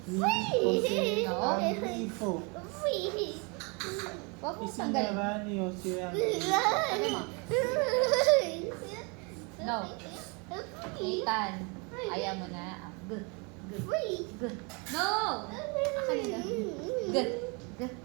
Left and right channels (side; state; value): left; quieter; 31.5 dB